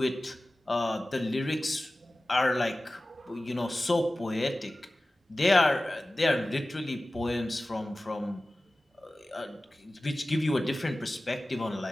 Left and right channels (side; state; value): both; normal; correlation 0.96